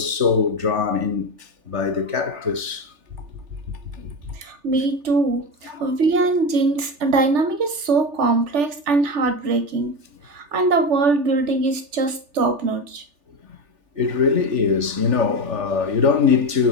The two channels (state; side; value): late; left; 3.4 ms